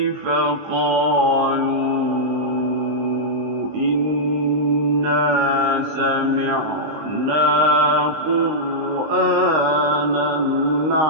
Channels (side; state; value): left; late; 19 ms